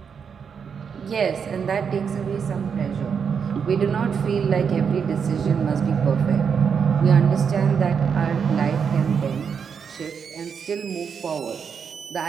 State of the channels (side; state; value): left; quieter; 6.6 dB